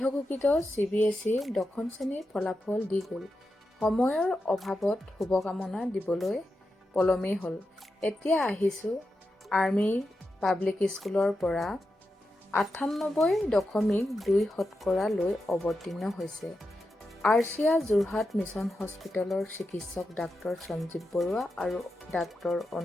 CBSE দশম শ্ৰেণীৰ ফলাফল দি গ'ল। সময়ৰ অভাৱত শুভকামনা দিবলৈ পলমেই হ'ল। এতিয়া আহিছোঁ আৰ্মি পাব্লিক স্কুলৰ পৰা 98.2% লৈ অৱতীৰ্ণ হৈছে। আৰচিয়া যোৰহাট মিছন হস্পিটেলৰ চিকিৎসক ডাক্তৰ সঞ্জীৱ বৰুৱা আৰু ডাক্তৰ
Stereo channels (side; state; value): both; normal; correlation 0.89